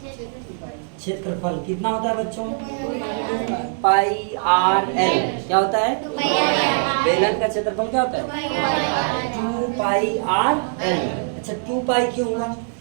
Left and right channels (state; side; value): silent; left; 62 dB below the other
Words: क्षेत्रफल कितना होता है बच्चों? पाई आर एल। क्या होता है? बेलन का क्षेत्रफल क्या होता है? 2 पाई आर एल। अच्छा 2 पाई क्यों हुआ?